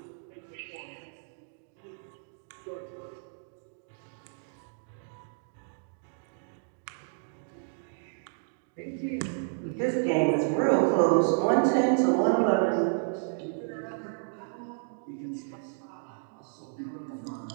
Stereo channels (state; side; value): silent; left; digital silence